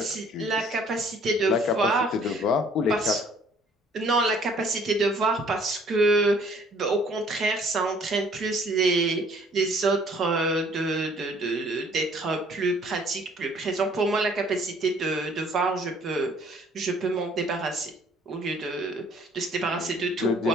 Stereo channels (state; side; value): normal; both; correlation 0.58